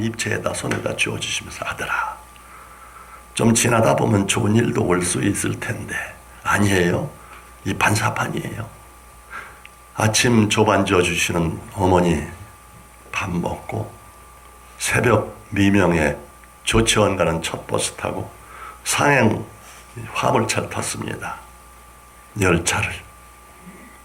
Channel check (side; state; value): both; identical; correlation 1.00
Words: 입체에다 손에다 쥐어주시면서 아들아 좀 지나다 보면 좋은 일도 올 수 있을 텐데 아니에요. 이 반사판이에요. 아침 조반 지어주시는 어머니 밥 먹고 새벽 미명에 조치원 가는 첫 버스 타고 상행 화물차를 탔습니다. 열차를.